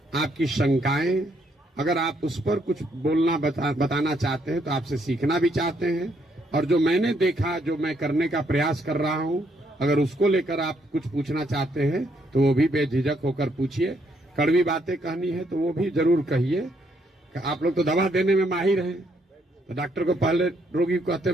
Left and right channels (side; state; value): both; normal; correlation 0.72